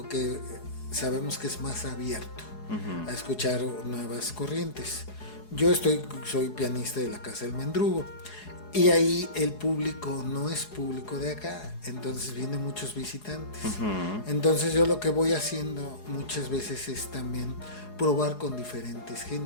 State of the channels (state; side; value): late; right; 4.8 ms